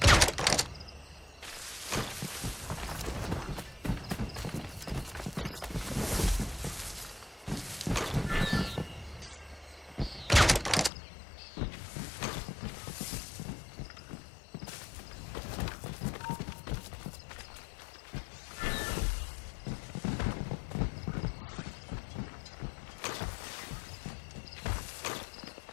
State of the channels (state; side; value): drops out; right; at 10.9 s